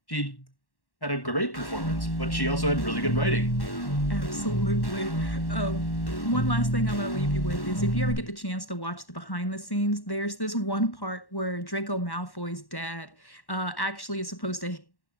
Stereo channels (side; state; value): right; late; 1.1 ms